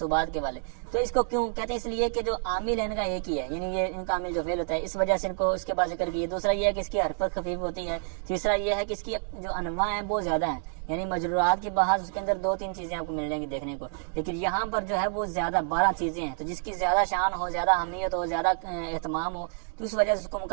کے والے۔ تو اس کو کیوں کہتے ہیں؟ اس لیے کہ جو عامل ہے ان کا ایک ہی ہے، یعنی یہ ان کا عامل جو فعل ہوتا ہے، اس وجہ سے ان کو اس کے بعد ذکر کیا۔ دوسرا یہ ہے کہ اس کی حرکت خفیف ہوتی ہے۔ تیسرا یہ ہے کہ اس کی جو انواع ہیں وہ زیادہ ہیں، یعنی مجرورات کی بحث اس کے اندر 2-3 چیزیں آپ کو مل جائیں گی دیکھنے کو، لیکن یہاں پر جو ہے وہ زیادہ 12 چیزیں ہیں۔ تو جس کی زیادہ شان ہو، زیادہ اہمیت ہو، زیادہ اہتمام ہو، تو اس وجہ سے اس کو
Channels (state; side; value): silent; left; digital silence